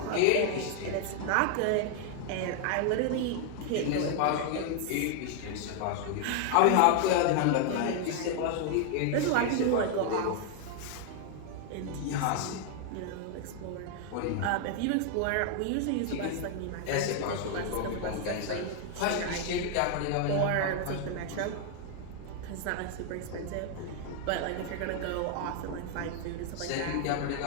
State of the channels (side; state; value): both; different; correlation 0.00